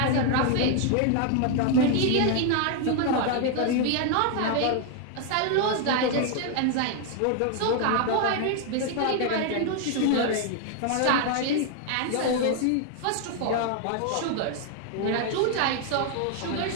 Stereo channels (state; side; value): different; both; correlation 0.00